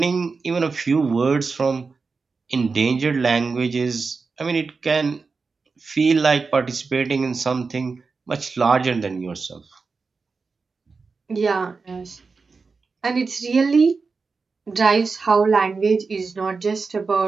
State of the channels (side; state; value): left; quieter; 4.6 dB